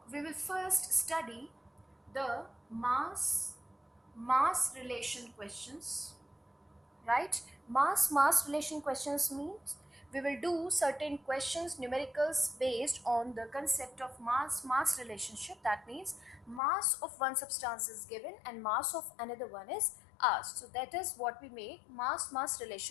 we will first study the mass relation questions, right? Mass relation questions means we will do certain questions, numericals based on the concept of mass relationship. That means mass of one substance is given and mass of another one is asked. So that is what we make mass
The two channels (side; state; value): right; drops out; at 16.6 s